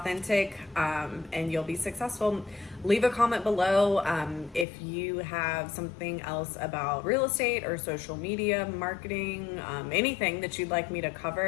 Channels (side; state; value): right; drops out; at 4.7 s